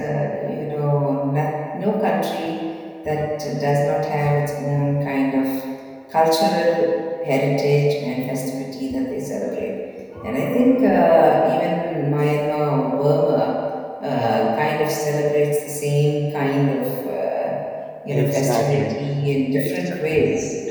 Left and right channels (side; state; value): both; identical; correlation 1.00